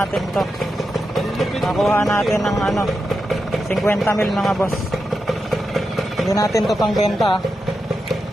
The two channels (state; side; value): normal; both; correlation 0.88